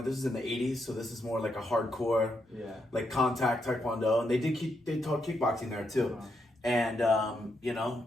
is in the 80s, so this is more a hardcore, contact Taekwondo. And they taught kickboxing there too. Uh-huh. And,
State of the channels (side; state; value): both; normal; correlation 0.80